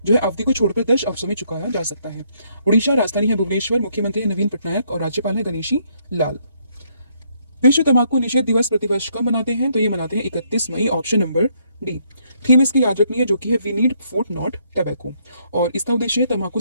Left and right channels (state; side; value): inverted; both; correlation -0.71